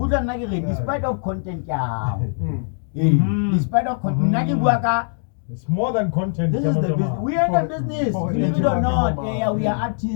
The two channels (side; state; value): right; silent; 65 dB below the other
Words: of content, yeah. Mm. Despite of content, It's more than content. this is the Jama business. Jama. We are in the business. For Believe it or Jama not, Jama. yeah, we are